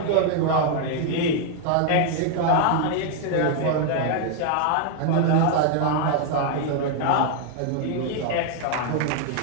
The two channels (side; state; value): both; different; correlation 0.00